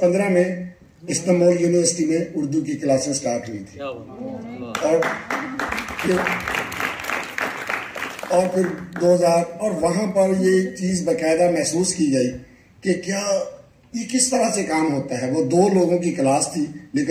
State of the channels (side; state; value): both; identical; correlation 1.00